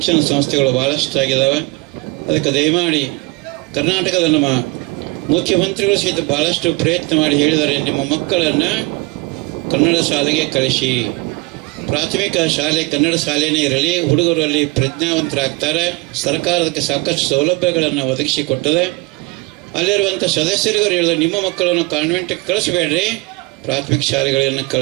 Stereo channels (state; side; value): quieter; left; 25.2 dB